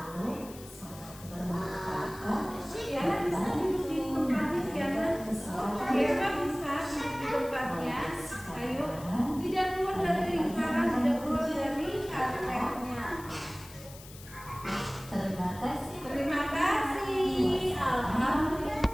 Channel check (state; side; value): noise; left; hiss, 18 dB below the sound